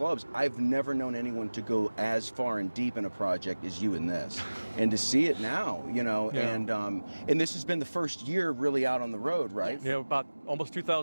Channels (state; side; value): inverted; both; correlation -1.00